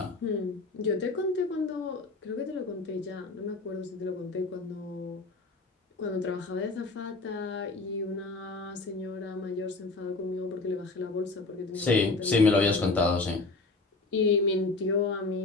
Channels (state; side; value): quieter; right; 3.5 dB